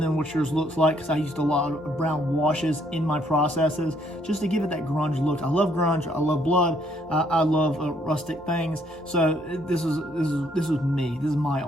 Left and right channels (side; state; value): both; normal; correlation 0.68